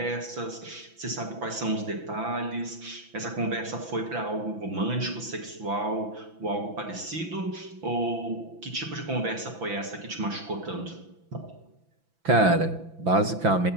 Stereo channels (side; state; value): left; late; 6.0 ms